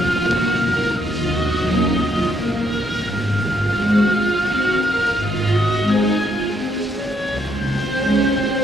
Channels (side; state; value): both; normal; correlation 0.73